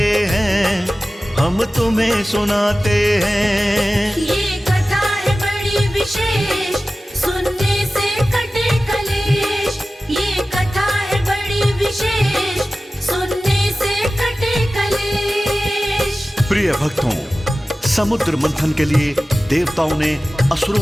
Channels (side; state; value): both; normal; correlation 0.96